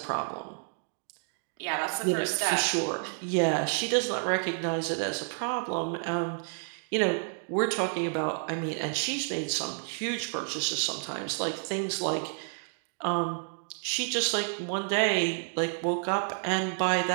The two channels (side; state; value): left; silent; 58 dB below the other